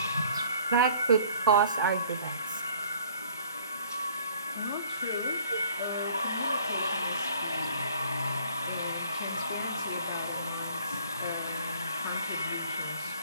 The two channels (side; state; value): both; inverted; correlation -0.54